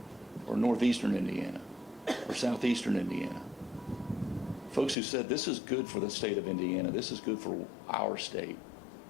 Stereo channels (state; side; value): drops out; right; at 5.0 s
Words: or northeastern Indiana, or southeastern Indiana. Folks who said, this is good for the state of Indiana, this is good for our state,